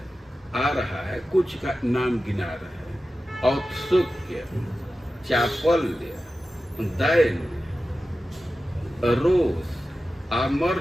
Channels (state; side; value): normal; both; correlation 0.94